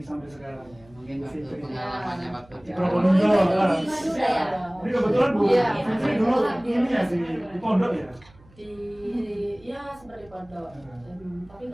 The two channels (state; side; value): noise; right; hum, 27 dB below the sound